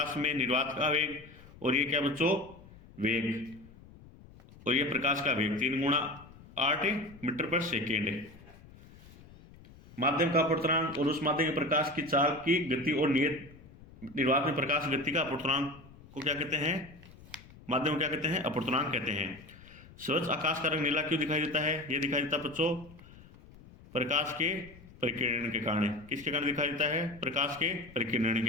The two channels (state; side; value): noise; left; rumble, 21 dB below the sound